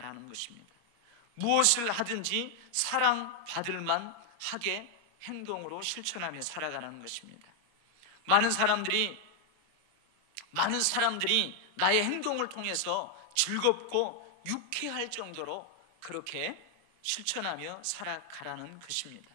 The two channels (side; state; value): left; late; 25 ms